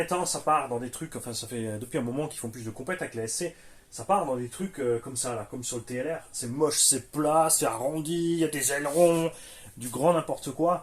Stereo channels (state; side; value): identical; both; correlation 1.00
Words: ça part dans des trucs, enfin ça fait depuis un moment qu'ils font plus de compète avec la SC, ça part dans des trucs comme ça, là, comme sur le TLR. C'est moche, c'est plat, c'est arrondi, il y a des ailerons, du grand n'importe